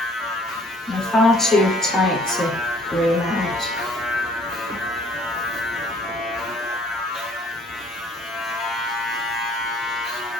They're far too tight to groom out.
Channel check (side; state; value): both; normal; correlation 0.58